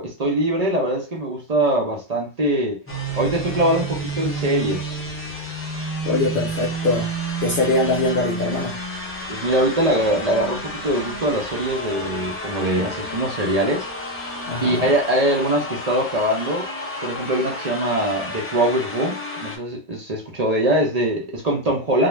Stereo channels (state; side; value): normal; both; correlation 0.06